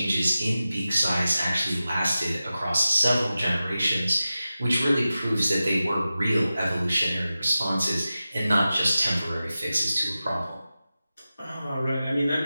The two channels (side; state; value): both; inverted; correlation -0.94